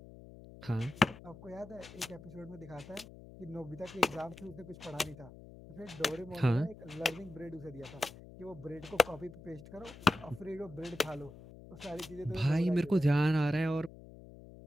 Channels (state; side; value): noise; left; hum, 17 dB below the sound